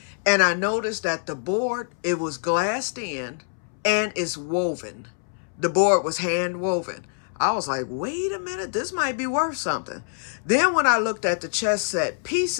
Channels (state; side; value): silent; right; 62 dB below the other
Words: And I noticed that the board, it was glassed in and it's woven. The board was hand woven. I was like, wait a minute, this might be worth something. Then when I looked at the chess set